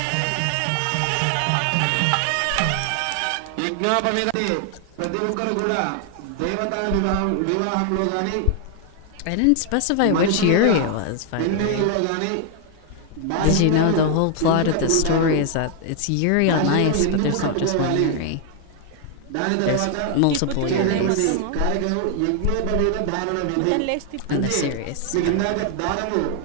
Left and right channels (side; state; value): both; different; correlation 0.00